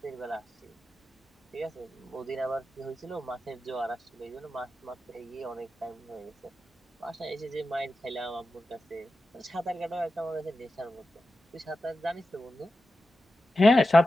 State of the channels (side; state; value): both; normal; correlation 0.92